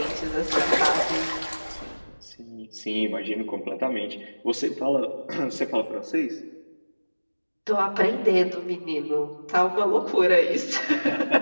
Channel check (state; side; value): inverted; both; correlation -1.00